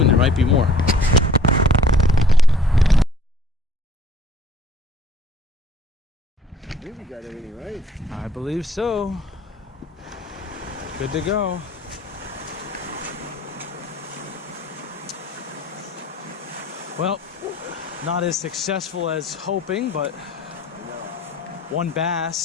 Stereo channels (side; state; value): both; normal; correlation 0.55